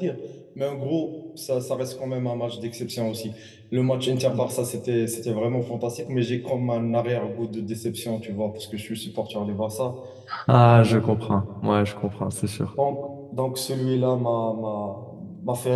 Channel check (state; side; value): identical; both; correlation 1.00